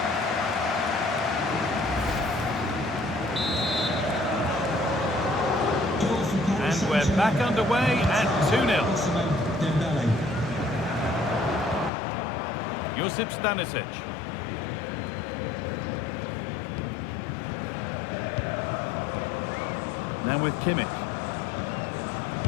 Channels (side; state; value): right; drops out; at 11.9 s